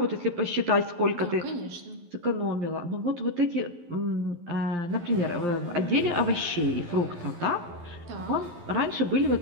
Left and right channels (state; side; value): late; left; 11 ms